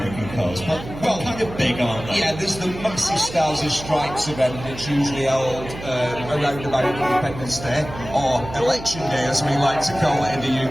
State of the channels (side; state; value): right; noise; hum, 12 dB below the sound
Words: cars, but well, kind of big, aren't they? Yeah, there's the massive Stars and Stripes event that's usually held around about Independence Day, or Election Day as we like to call it in the